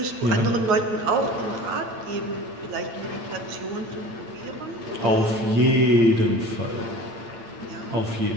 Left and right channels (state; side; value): late; left; 8.8 ms